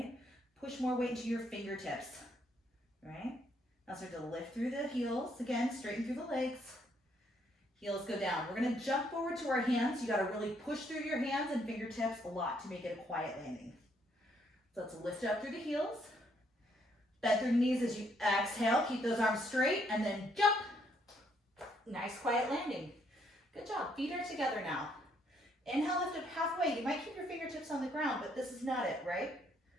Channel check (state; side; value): normal; both; correlation 0.71